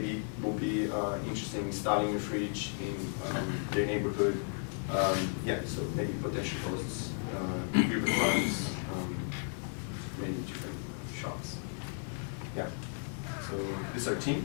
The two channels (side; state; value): right; silent; 55 dB below the other